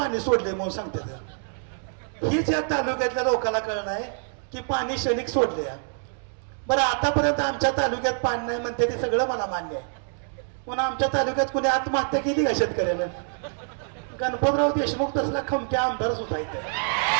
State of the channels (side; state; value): left; silent; 61 dB below the other